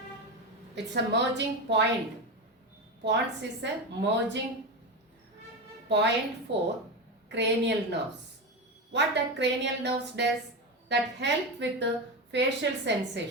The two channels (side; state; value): both; normal; correlation 0.18